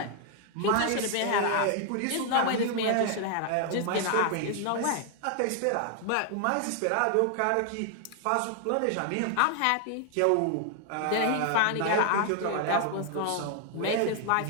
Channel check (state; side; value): different; both; correlation 0.00